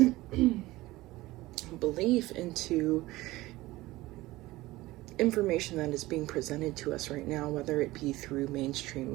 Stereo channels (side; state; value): left; quieter; 18.6 dB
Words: belief into information that is being presented to us right now, whether it be through mainstream